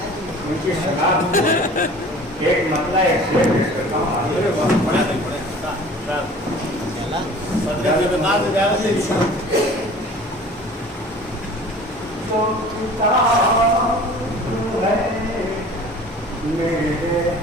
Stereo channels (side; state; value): both; normal; correlation 0.45